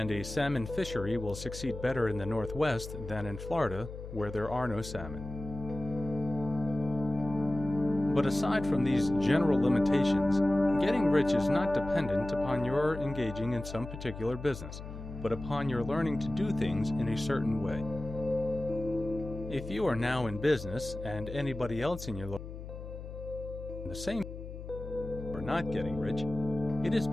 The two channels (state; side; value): noise; left; hum, 10 dB below the sound